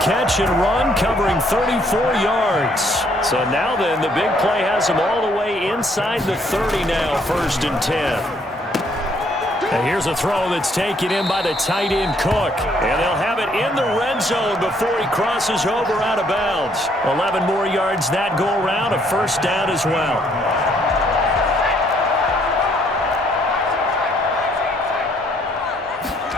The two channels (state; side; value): normal; both; correlation 0.67